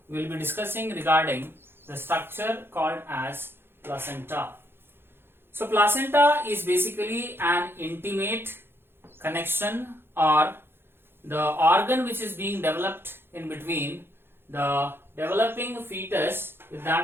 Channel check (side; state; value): left; late; 0.11 ms